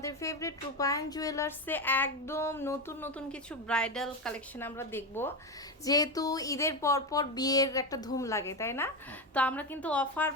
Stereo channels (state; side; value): normal; both; correlation 0.14